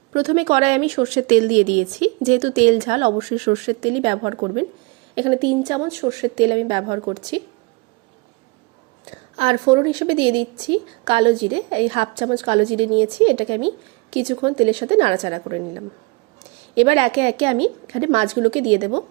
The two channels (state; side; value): quieter; left; 28.1 dB